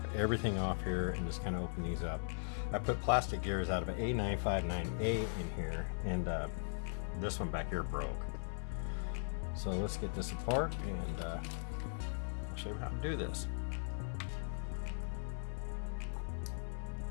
everything off here and just kind of open these up. I put plastic gears out of an A959A in here, and this one back here broke. So let's get this apart and I'll show you how to do this.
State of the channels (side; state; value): right; silent; 52 dB below the other